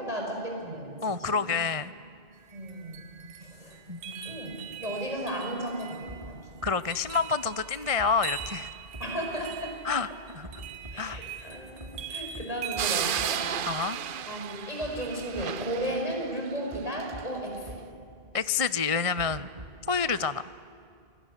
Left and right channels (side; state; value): left; late; 2.4 ms